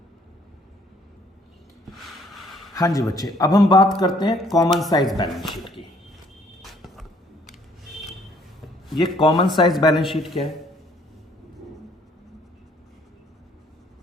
हाँ जी बच्चे, अब हम बात करते हैं कॉमन साइज बैलेंस शीट की। ये कॉमन साइज बैलेंस शीट क्या है,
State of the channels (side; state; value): both; normal; correlation 0.62